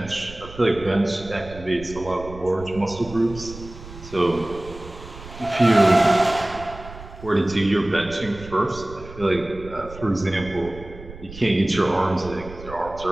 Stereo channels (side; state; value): right; noise; rumble, 15 dB below the sound